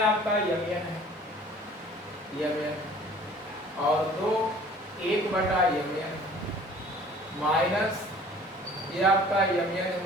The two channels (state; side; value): normal; both; correlation 0.50